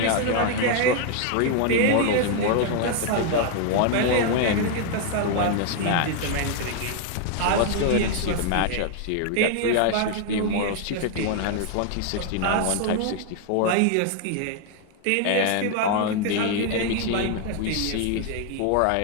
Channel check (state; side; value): different; both; correlation 0.00